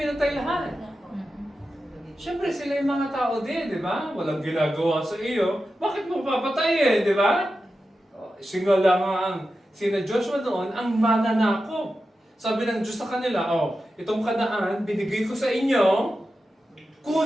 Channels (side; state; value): both; normal; correlation 0.91